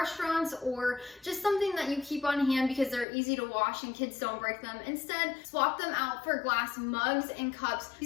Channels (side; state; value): right; drops out; at 3.1 s